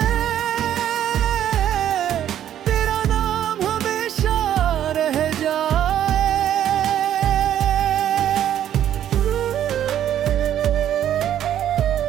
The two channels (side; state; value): left; quieter; 10.8 dB